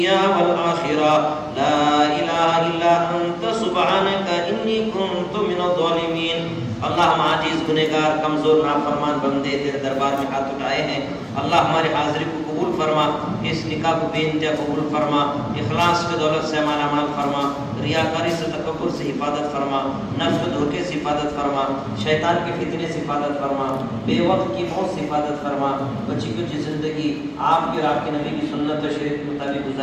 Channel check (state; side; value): identical; both; correlation 1.00